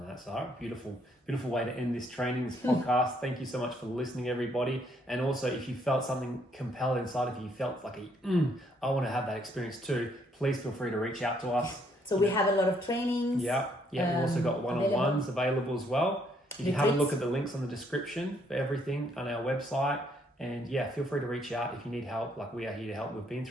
that, Sarah. Beautiful way to end this training, this podcast. Thank you so much for listening, everybody. And also, if you felt something compelled inside of you, you felt like I want to have that experience too, please feel free to reach out to us. So we have a lot of trainings. Yeah. We've also got one-on-ones available as well. You can have a look at the links on the description for everything on our website. And yeah, feel free to reach out if you need help. Like, we are here to help. We've been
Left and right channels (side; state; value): both; normal; correlation 0.70